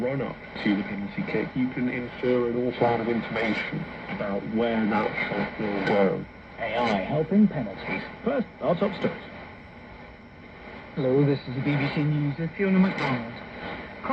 to the penalty kick, you can infer an awful lot of information about where that shot will go. AI helping penalties. First, our top stories. Hello, this is the BBC News with Fiona MacDonald.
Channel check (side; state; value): both; identical; correlation 1.00